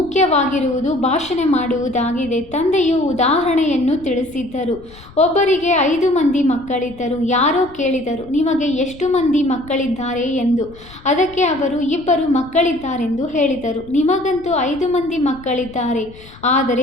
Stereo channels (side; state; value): left; noise; rumble, 21 dB below the sound